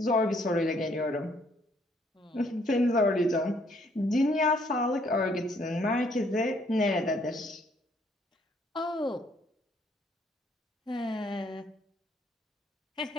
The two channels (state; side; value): normal; both; correlation 0.67